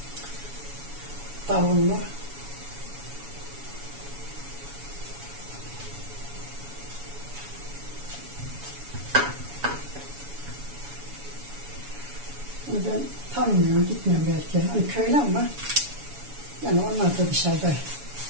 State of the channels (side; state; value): left; late; 7.1 ms